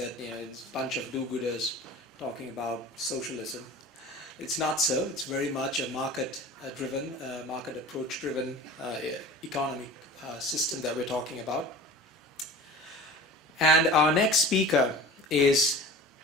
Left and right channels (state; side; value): normal; both; correlation 0.39